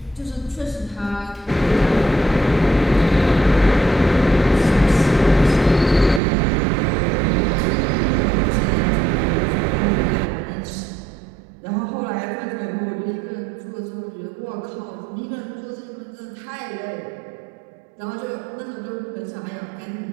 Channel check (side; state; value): left; drops out; at 6.2 s